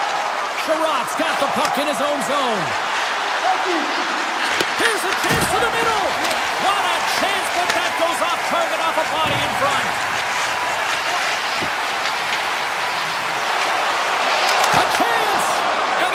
Sherratt's got the puck in his own zone. Here's a chance to the middle. What a chance, but that goes off target, off a body in front. A chance, and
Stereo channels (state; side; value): identical; both; correlation 1.00